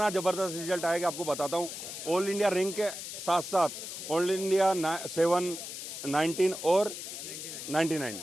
ज़बरदस्त रिजल्ट आएगा, आपको बताता हूँ। ऑल इंडिया रैंक के साथ साथ ऑल इंडिया 7, 19 और 99।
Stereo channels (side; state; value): left; noise; hiss, 8 dB below the sound